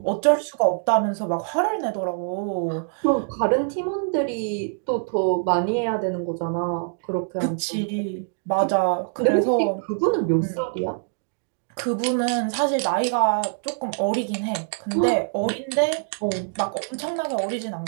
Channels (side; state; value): left; silent; digital silence